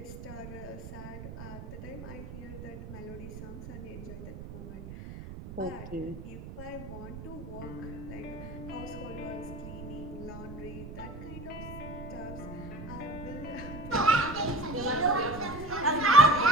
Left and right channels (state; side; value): noise; right; rumble, 10 dB below the sound